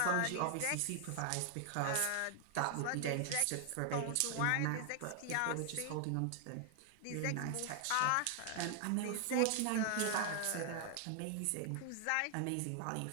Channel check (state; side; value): different; both; correlation 0.00